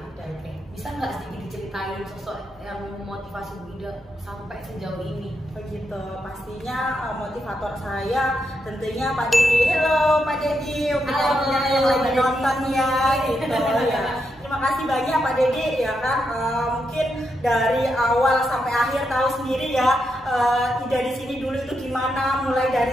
Oke, bisa nggak sedikit diceritain sosok yang memotivasi Bu Ida sampai sejauh ini? Begitu, pastinya motivator saya tentunya Pak Dedi. Halo Pak Dedi, yang lagi nonton ya gitu ya. Terima kasih banyak Pak Dedi ya kan, mungkin dari awal sampai akhir tahu sendiri ya, Ida di sini dulu itu gimana. Mulai dari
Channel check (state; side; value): normal; both; correlation 0.83